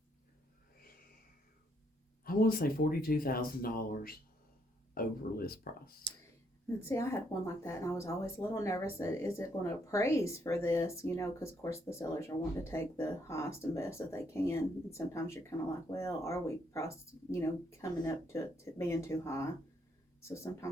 I want to say $42,000 over list price. And see, I had one like that, and I was always a little nervous that, is it going to appraise for this, because of course the sellers are wanting to take the highest and best that they can, and sometimes you're kind of like, well, are we priced, coming up to being too high? So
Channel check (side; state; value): both; normal; correlation 0.72